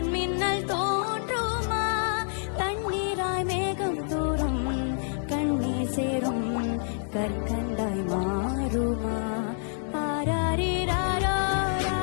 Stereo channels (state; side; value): silent; right; 60 dB below the other